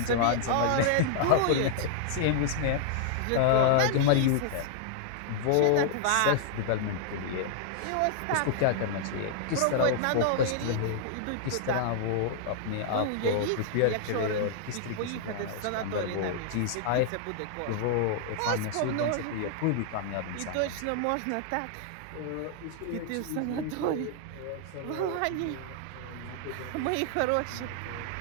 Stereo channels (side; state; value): both; different; correlation -0.01